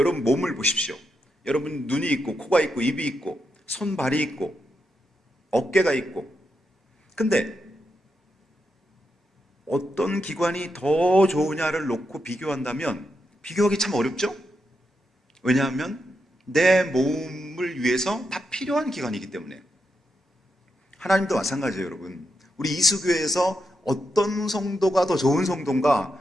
몸을 보십시오. 여러분 눈이 있고 코가 있고 입이 있고 손발이 있고 어깨가 있고, 근데 어떤 기관이 더 좋으냐를 놓고 비교한다면 비교하기 참 어렵죠? 왜냐하면 내 몸을 위해서 다 필요한 기관이기 때문에. 하나님도 마찬가지예요, 여러분. 우리 이수교회에서 어떤 성도가 더 좋은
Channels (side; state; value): both; normal; correlation 0.84